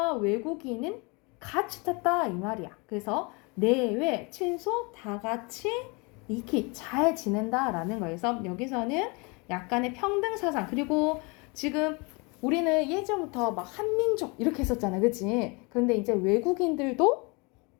외국인은 같이 탔다 이 말이야. 그래서 내외 친소 다 같이 익히 잘 지낸다라는 거에서 여기서는 약간의 평등 사상 그리고 지금 우리는 예전부터 막 한민족 이렇게 했었잖아, 그치? 그런데 이제 외국인들도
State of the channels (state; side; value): quieter; right; 29.3 dB